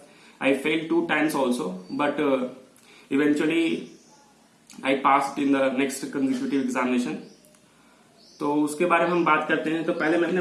I failed 2 times also, but eventually I passed in the next consecutive examination। तो उसके बारे में हम बात करते हैं। तो पहले मैं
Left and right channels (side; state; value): both; identical; correlation 1.00